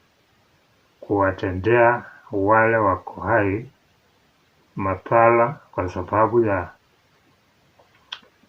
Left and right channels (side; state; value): both; identical; correlation 1.00